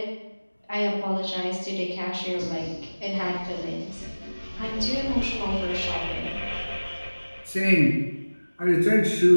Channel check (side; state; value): both; inverted; correlation -1.00